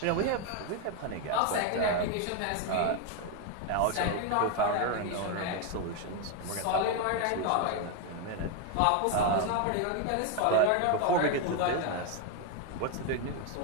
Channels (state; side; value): different; both; correlation 0.01